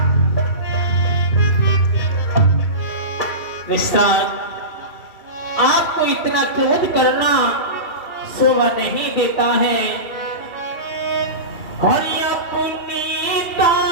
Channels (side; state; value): right; late; 2.3 ms